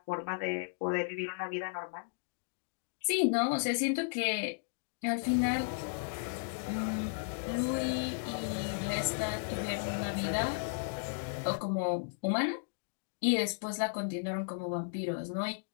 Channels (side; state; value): right; silent; digital silence